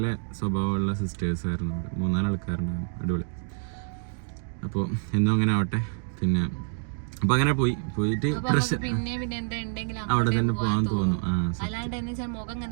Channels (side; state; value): left; silent; digital silence